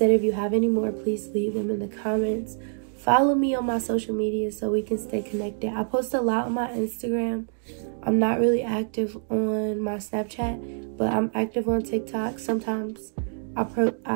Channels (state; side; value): silent; left; digital silence